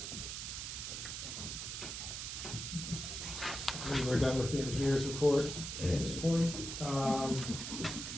engineer's report at this point.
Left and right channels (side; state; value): right; noise; hiss, 5 dB below the sound